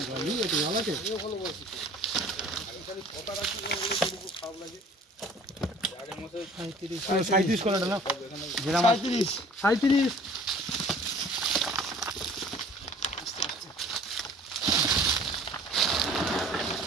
জল আছে। 37 করে ডালা, 37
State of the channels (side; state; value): both; normal; correlation 0.50